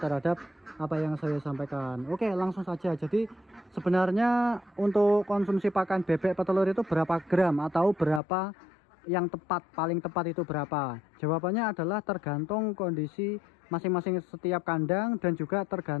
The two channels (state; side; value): drops out; right; at 8.2 s